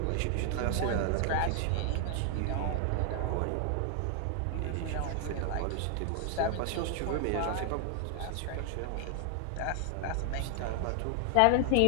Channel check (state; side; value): different; both; correlation 0.00